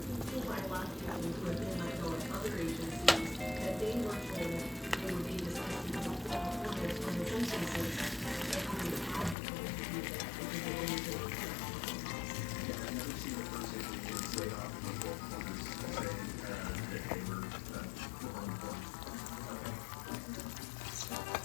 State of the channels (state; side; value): drops out; right; at 9.3 s